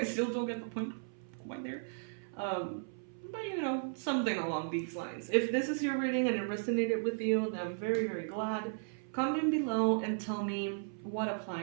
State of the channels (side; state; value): left; silent; 54 dB below the other